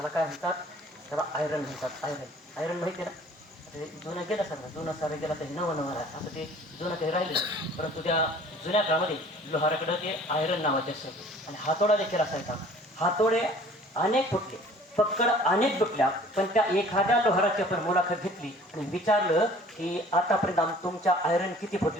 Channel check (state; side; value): normal; both; correlation 0.51